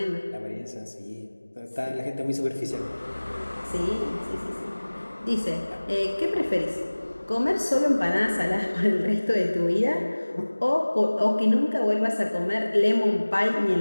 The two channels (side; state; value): both; inverted; correlation -1.00